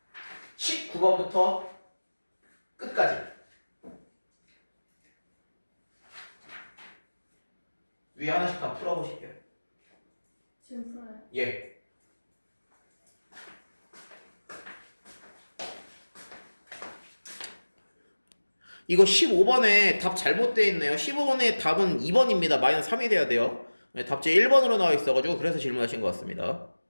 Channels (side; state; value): both; inverted; correlation -1.00